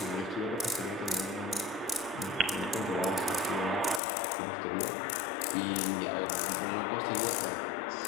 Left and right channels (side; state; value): right; drops out; at 4.0 s